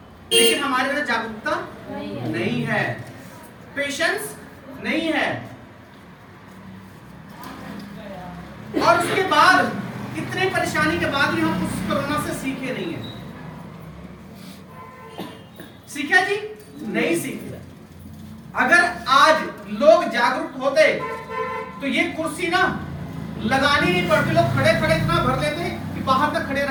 लेकिन हमारे अंदर जागरूकता नहीं है, पेशेंस नहीं है। और उसके बाद इतने परेशानी के बाद भी हम उस कोरोना से सीखे नहीं है। सीखा जी? नहीं सीखे। अगर आज लोग जागरूक होते तो ये कुर्सी ना लगानी नहीं पड़ती, लोग खड़े खड़े इतना भर लेते कि बाहर तक खड़े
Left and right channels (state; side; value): identical; both; correlation 1.00